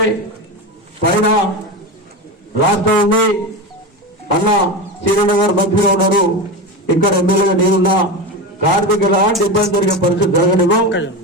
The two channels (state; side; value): normal; both; correlation 0.21